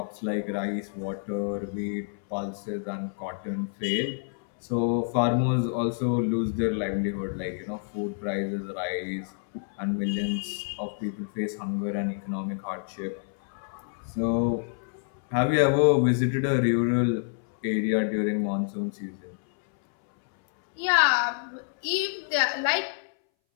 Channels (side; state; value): right; silent; 59 dB below the other